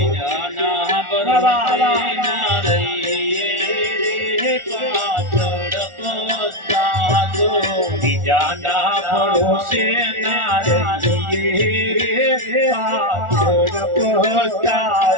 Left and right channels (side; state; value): left; late; 1.4 ms